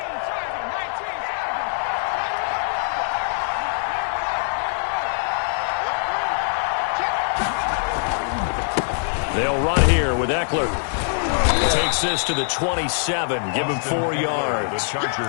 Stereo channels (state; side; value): silent; right; digital silence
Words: They'll run here with Eckler. Takes this to the 27. Give him 4 yards. The